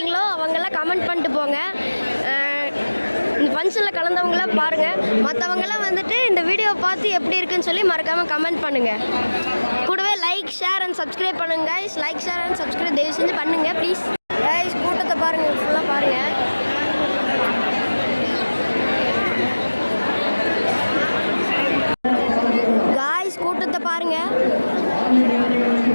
அவங்கெல்லாம் கமெண்ட் பண்ணிட்டு போங்க. இந்த ஃபங்க்ஷனில் கலந்தவங்களாம் பாருங்கள். மற்றவங்களாம் வந்துட்டு இந்த வீடியோவை பார்த்து எப்படி இருக்குன்னு சொல்லி மறக்காமல் கமெண்ட் பண்ணுங்கள். கூடவே லைக் ஷேர் அண்ட் சப்ஸ்கிரைப் பண்ணுங்கள் guys. Like share and subscribe தயவு செஞ்சு பண்ணுங்கள் ப்ளீஸ். கைஸ் கூட்டத்தை பாருங்கள், ஃபுல்லாக பாருங்கள். காய்ஸ் கூட்டத்தை பாருங்கள்.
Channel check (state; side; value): inverted; both; correlation -1.00